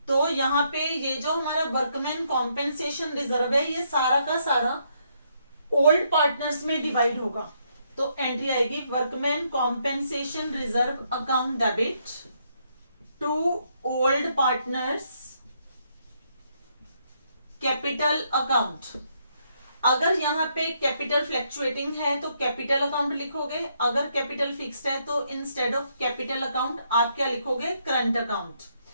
तो यहां पे ये जो हमारा वर्कमैन कॉम्पेंसेशन रिजर्व है ये सारा का सारा ओल्ड पार्टनर्स में डिवाइड होगा। तो एंट्री आएगी workman compensation reserve account debit to old partners capital account. अगर यहाँ पे कैपिटल फ्लैक्चुएटिंग है तो कैपिटल अकाउंट लिखोगे, अगर कैपिटल फिक्स्ड है तो इंस्टेड ऑफ कैपिटल अकाउंट आप क्या लिखोगे? Current account.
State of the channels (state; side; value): inverted; both; correlation -0.74